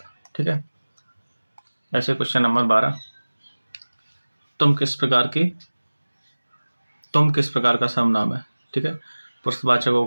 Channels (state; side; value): inverted; both; correlation -1.00